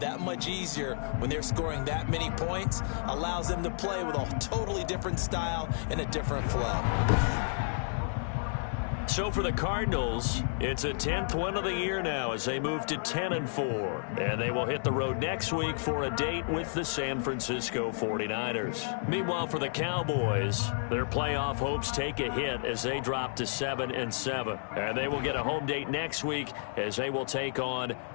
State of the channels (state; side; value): silent; right; digital silence